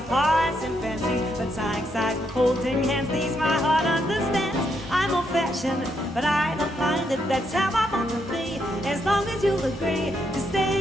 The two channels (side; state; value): both; normal; correlation 0.78